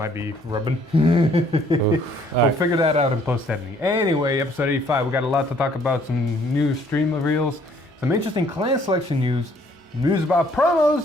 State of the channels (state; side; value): normal; both; correlation 0.62